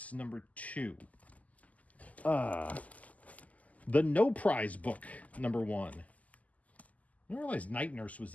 number 2. The No Prize book number 1. I didn't realize Night Nurse was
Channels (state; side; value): late; right; 0.074 ms